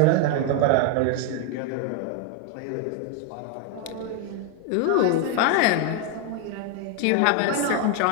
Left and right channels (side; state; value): both; different; correlation 0.01